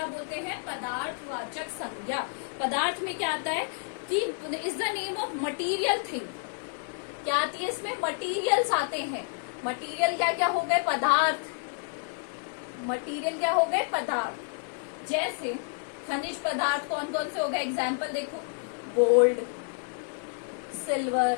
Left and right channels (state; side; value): silent; right; 58 dB below the other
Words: बोलते हैं? पदार्थवाचक संज्ञा। पदार्थ में क्या आता है कि is the name of material thing. क्या आती है इसमें? मटीरियल्स आते हैं। मटीरियल क्या क्या हो गए? पदार्थ। मटीरियल क्या हो गए? पदार्थ। जैसे खनिज पदार्थ कौन कौन से हो गए? एग्जाम्पल देखो, gold,